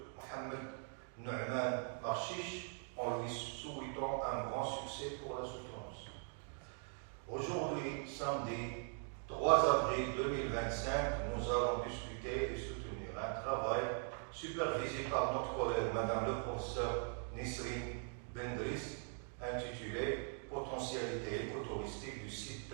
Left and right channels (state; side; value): silent; left; 50 dB below the other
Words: Mohamed Nouman Marchiche, en lui souhaitant un grand succès pour la soutenance. Aujourd'hui, samedi 3 avril 2025, nous allons discuter et soutenir un travail supervisé par notre collègue Madame le professeur Nisrine Bendriss, intitulé Potentialité écotouristique du site